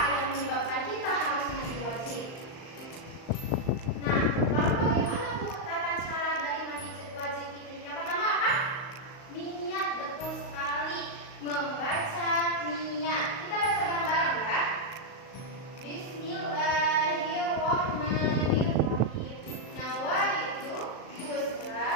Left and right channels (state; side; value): late; right; 38 ms